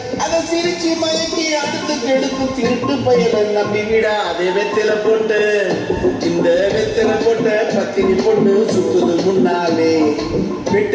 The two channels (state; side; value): identical; both; correlation 1.00